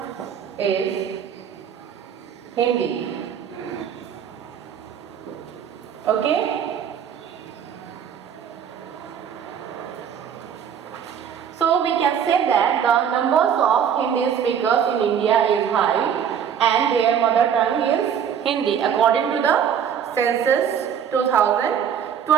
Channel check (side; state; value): left; quieter; 8.2 dB